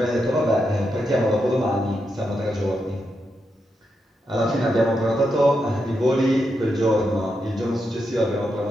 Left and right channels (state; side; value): normal; both; correlation 0.84